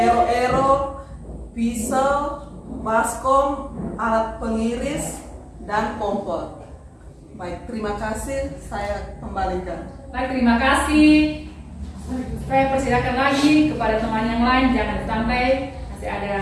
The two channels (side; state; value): both; identical; correlation 1.00